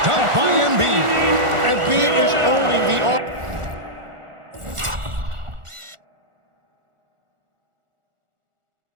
dunk by Embiid. Embiid is owning the offense.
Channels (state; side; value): late; left; 1.4 ms